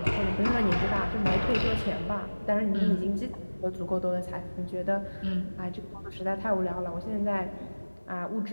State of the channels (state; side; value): inverted; both; correlation -1.00